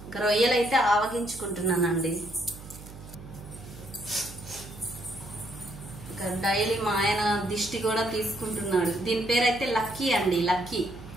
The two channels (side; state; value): right; noise; hum, 16 dB below the sound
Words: రొయ్యలైతే ఆవగించుకుంటున్నానండి. డైలీ మా ఆయన దిష్టి కూడా తీసుకుంటున్నాడు. దీని పేరైతే లక్కీ అండి, లక్కీ.